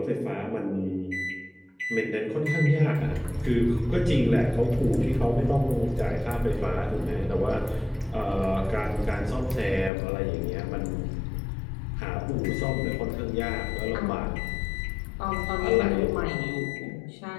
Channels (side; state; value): right; drops out; at 9.9 s